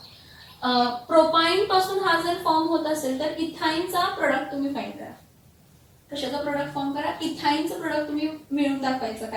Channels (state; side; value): identical; both; correlation 1.00